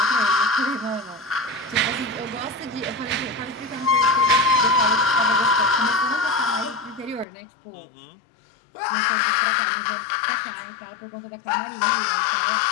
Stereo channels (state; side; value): drops out; right; at 7.2 s